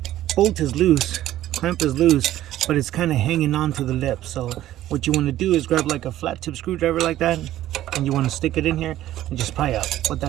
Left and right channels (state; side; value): quieter; left; 13.6 dB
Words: Bolt is loose, clamp is loose, but it's kind of hanging on to the lip. So what you want to do is grab like a flat tip screwdriver like that, and you want to stick it in here and just pry up. What